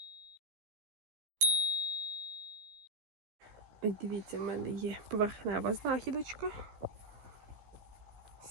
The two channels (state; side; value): late; left; 15 ms